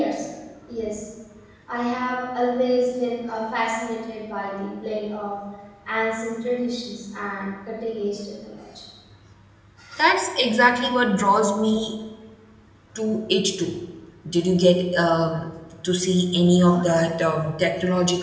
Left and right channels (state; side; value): identical; both; correlation 1.00